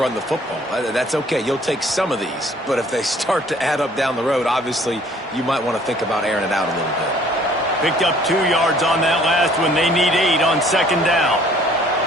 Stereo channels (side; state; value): both; normal; correlation 0.57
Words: the football. That's okay. You'll take some of these. But if they start to add up down the road, obviously, you might want to think about airing it out a little bit. Picked up 2 yards on that last one. They need 8 on 2nd down.